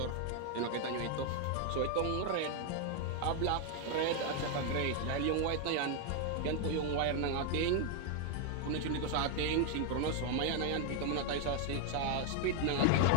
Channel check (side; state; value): both; different; correlation 0.01